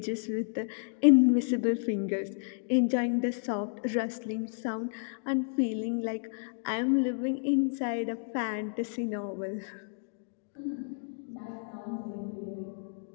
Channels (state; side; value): silent; right; digital silence